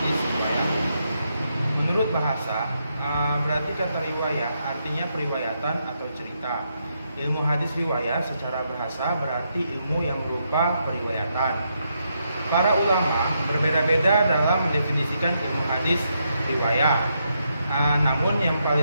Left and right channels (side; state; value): both; inverted; correlation -0.80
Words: riwayat. Menurut bahasa, berarti kata riwayat artinya periwayatan atau cerita. Ilmu hadis riwayat secara bahasa berarti ilmu yang berupa periwayatan. Para ulama berbeda-beda dalam mendefinisikan ilmu hadis riwayat. Namun yang